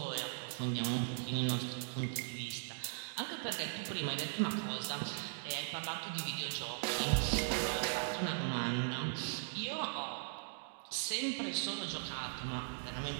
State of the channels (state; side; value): silent; left; digital silence